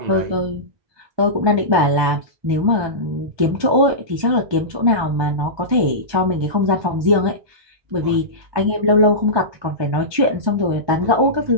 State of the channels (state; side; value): late; left; 1.2 ms